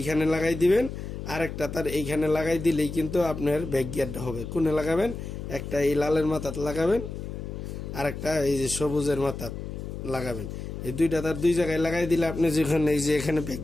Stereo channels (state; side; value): noise; left; hum, 8 dB below the sound